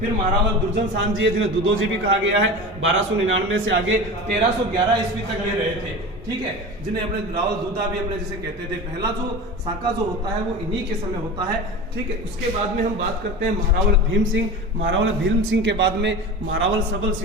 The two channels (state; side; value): normal; both; correlation 0.31